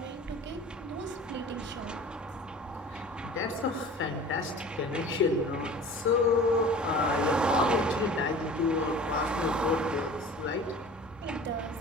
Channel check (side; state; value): both; normal; correlation 0.42